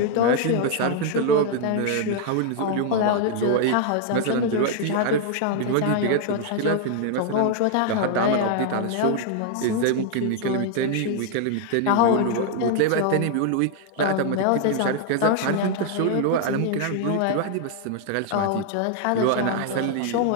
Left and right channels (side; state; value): both; different; correlation 0.00